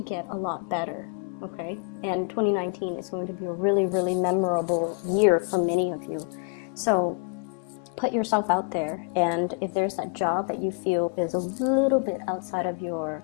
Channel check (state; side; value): quieter; right; 37.6 dB